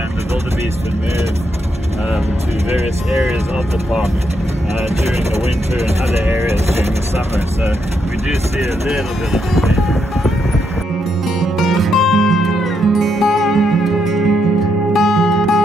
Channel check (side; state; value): both; normal; correlation 0.79